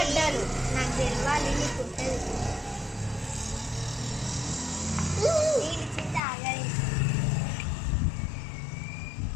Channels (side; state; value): right; drops out; at 6.2 s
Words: నాకు తెలియాలి. నీకు ఉంటుంది